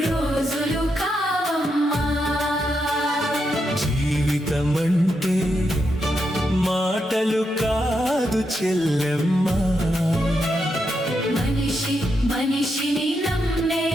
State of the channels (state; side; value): normal; both; correlation 0.83